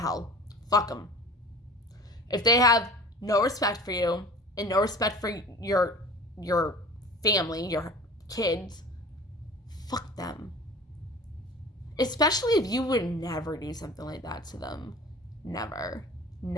Fuck them. If they have no respect for you and no respect for your family, your kids, fuck them. Especially if you would never do something like that to them. Never.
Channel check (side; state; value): both; normal; correlation 0.41